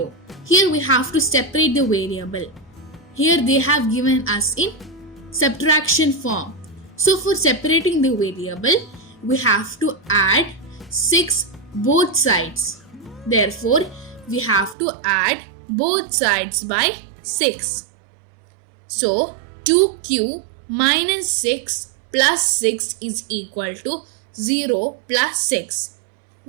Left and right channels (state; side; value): drops out; left; at 14.8 s